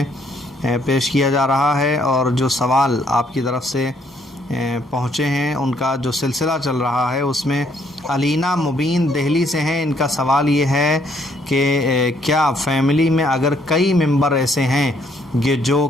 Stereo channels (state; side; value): normal; both; correlation 0.68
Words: پیش کیا جا رہا ہے، اور جو سوال آپ کی طرف سے پہنچے ہیں ان کا جو سلسلہ چل رہا ہے اس میں علینا مبین دہلی سے ہیں۔ ان کا سوال یہ ہے کہ کیا فیملی میں اگر کئی ممبر ایسے ہیں جو